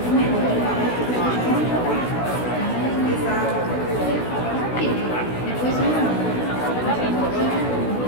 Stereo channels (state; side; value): late; right; 16 ms